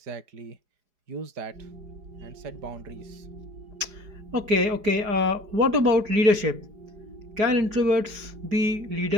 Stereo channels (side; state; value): left; late; 4.8 ms